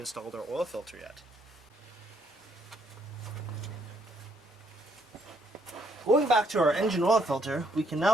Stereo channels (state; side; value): normal; both; correlation 0.70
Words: our oil filter yet. Going back to our engine oil filter, we can